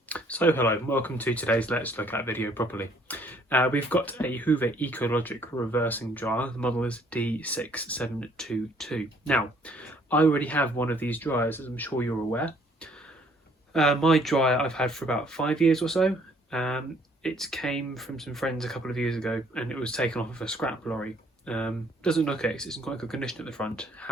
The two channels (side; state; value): both; normal; correlation 0.62